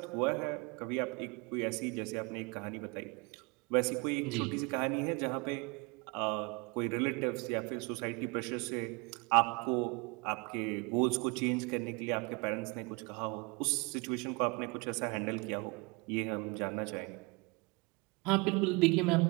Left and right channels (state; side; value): quieter; left; 28.6 dB